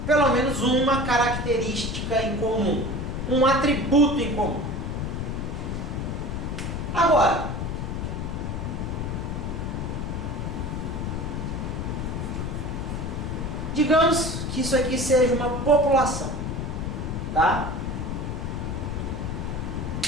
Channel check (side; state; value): left; noise; rumble, 3 dB below the sound